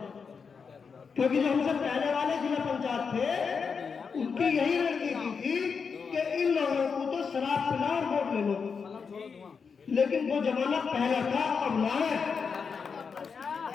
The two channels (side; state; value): right; quieter; 5.7 dB